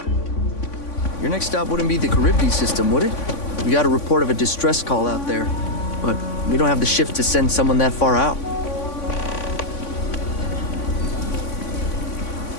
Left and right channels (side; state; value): right; late; 3.5 ms